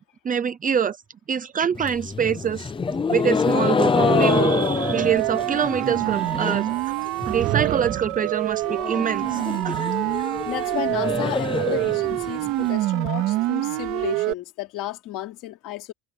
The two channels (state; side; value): quieter; left; 3.5 dB